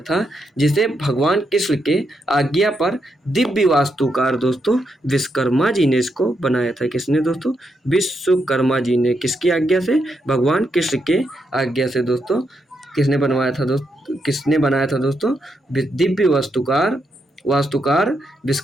जिसे भगवान कृष्ण के आज्ञा पर दिव्य वास्तुकार दोस्तों विश्वकर्मा जी ने इसको बनाया था। किसने दोस्तों? विश्वकर्मा जी ने। किसकी आज्ञा से? भगवान कृष्ण के आज्ञा से दोस्तों। किसने बनवाया था दोस्तों? किसने बनाया था दोस्तों? दिव्य वास्तुकार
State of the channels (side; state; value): both; normal; correlation 0.81